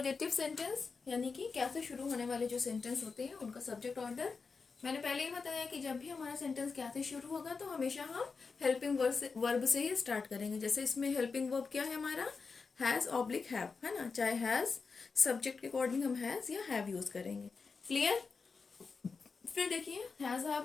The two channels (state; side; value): quieter; right; 4.8 dB